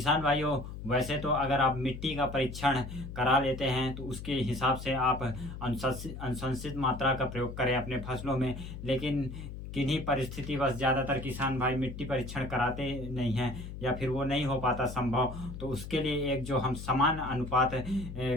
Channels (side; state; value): left; noise; hum, 10 dB below the sound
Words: भाइयों, वैसे तो अगर आप मिट्टी का परीक्षण करा लेते हैं तो उसके हिसाब से आप अनुशंसित मात्रा का प्रयोग करें अपने फसलों में, लेकिन किन्हीं परिस्थितिवश ज़्यादातर किसान भाई मिट्टी परीक्षण कराते नहीं हैं या फिर वो नहीं हो पाता संभव। तो उसके लिए एक जो हम समान अनुपात